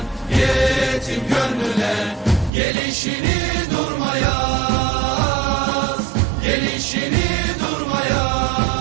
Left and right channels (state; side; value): drops out; left; at 2.5 s